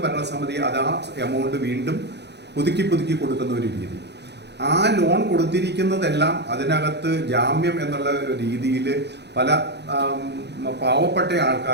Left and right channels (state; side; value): late; left; 0.50 ms